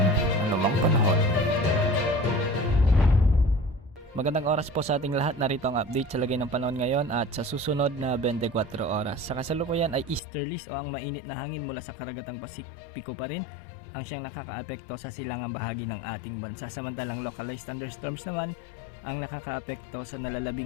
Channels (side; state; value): right; drops out; at 10.2 s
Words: anumang panahon. Magandang oras po sa ating lahat. Narito ang update sa lagay ng panahon ngayon at sa susunod na 24 oras. Sa kasalukuyan ay easterlies o ang mainit na hangin mula sa karagatang Pasipiko pa rin ang siyang nakakaapekto sa silangang bahagi ng ating bansa. Samantalang localized thunderstorms naman ang nakakaapekto sa